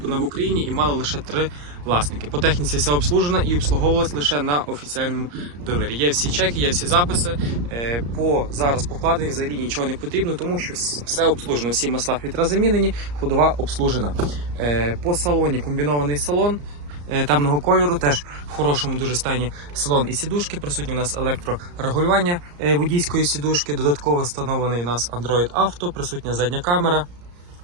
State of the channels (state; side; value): late; left; 34 ms